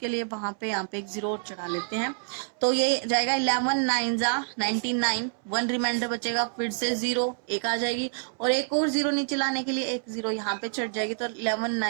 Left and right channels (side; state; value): left; silent; 60 dB below the other